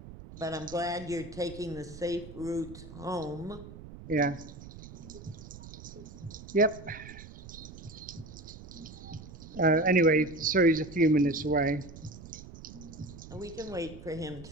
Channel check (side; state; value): right; noise; rumble, 15 dB below the sound